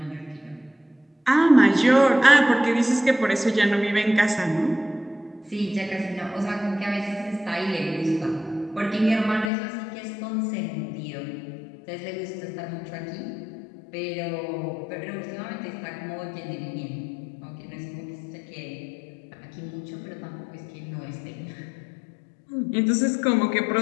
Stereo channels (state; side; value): drops out; right; at 9.5 s